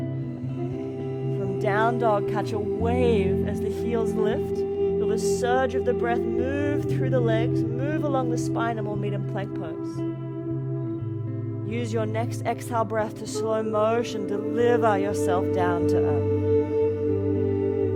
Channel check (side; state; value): both; identical; correlation 1.00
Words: From down dog, catch a wave as the heels lift. Feel the surge of the breath move through the legs, move along the spine, and we'll meet in plank pose. Use your next exhale breath to slow motion, deliver yourself down to earth.